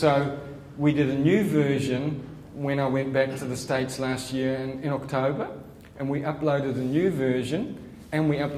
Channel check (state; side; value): identical; both; correlation 1.00